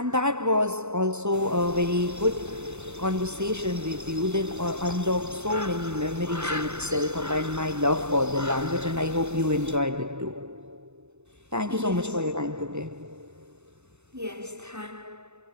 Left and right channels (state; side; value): late; left; 0.82 ms